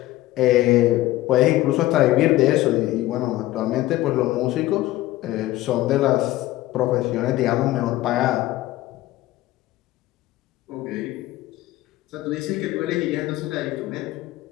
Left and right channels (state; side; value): quieter; right; 16.4 dB